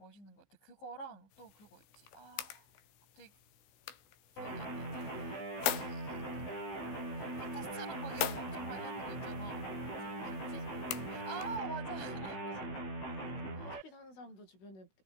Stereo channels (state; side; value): late; right; 16 ms